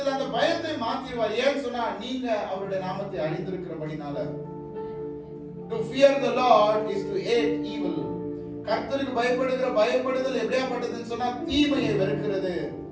அந்த பயத்தை மாத்திடுவார். ஏன்னு சொன்னா நீங்க அவருடைய நாமத்தை அறிந்திருக்கிறபடினால. To fear the Lord is to hate evil. கர்த்தருக்கு பயப்படுதல் எப்படியாப்பட்டதுன்னு சொன்னா தீமையை வெறுக்கிறது.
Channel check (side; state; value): both; identical; correlation 1.00